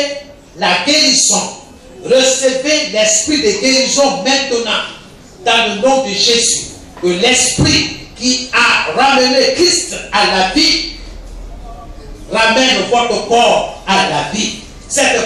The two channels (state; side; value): identical; both; correlation 1.00